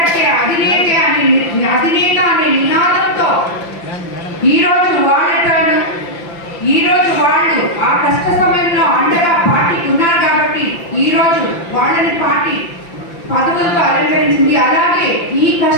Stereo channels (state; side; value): late; right; 5.8 ms